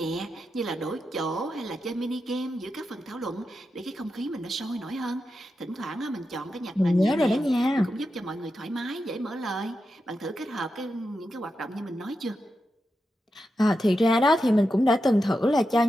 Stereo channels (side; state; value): both; normal; correlation 0.88